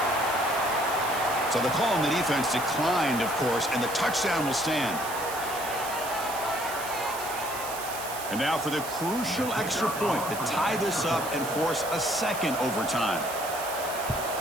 So the call on the defense declined, of course, and the touchdown will stand. And now for the crucial extra point to tie this up and force a second overtime.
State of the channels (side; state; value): right; noise; hiss, 10 dB below the sound